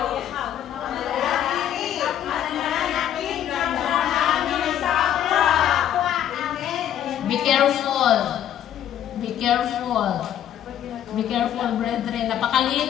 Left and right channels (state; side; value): quieter; right; 10.7 dB